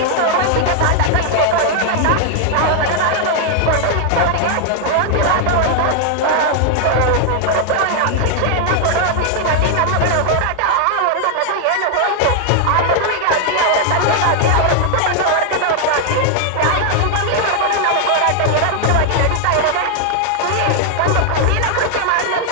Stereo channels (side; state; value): both; different; correlation 0.00